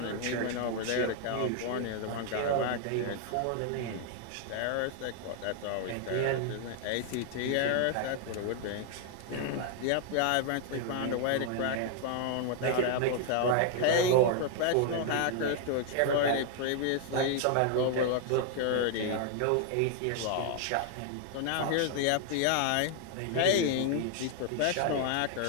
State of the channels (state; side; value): different; both; correlation 0.00